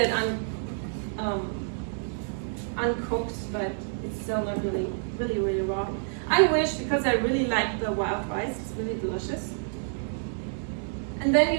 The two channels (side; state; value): left; silent; digital silence